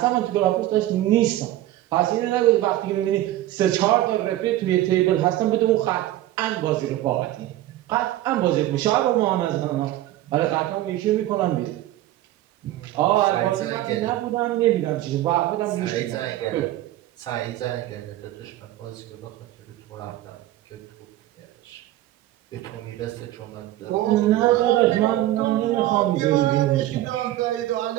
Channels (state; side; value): quieter; left; 14.7 dB